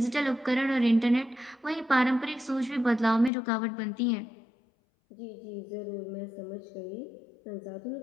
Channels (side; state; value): right; drops out; at 3.3 s